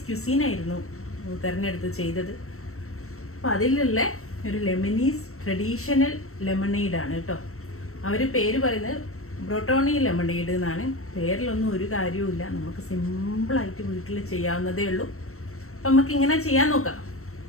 ക്യുസീനായിരുന്നു തിരഞ്ഞെടുത്ത് ചെയ്തത്. അപ്പോൾ അതിലുള്ള ഒരു ലെബനീസ് ട്രഡീഷണൽ ലെമണേഡാണ് കേട്ടോ. അവർ പേര് പറയുന്നത് ബ്രോട്ടോണി ലെമണേഡ് എന്നാണ്. പേരിലൊന്നും ഒരു കാര്യവുമില്ല, നമുക്ക് സിമ്പിളായിട്ട് വീട്ടിൽ ചെയ്യാവുന്നതേ ഉള്ളൂ. അപ്പം നമുക്ക് ഇങ്ങനെ ചെയ്യാൻ നോക്കാം.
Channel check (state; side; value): late; right; 0.63 ms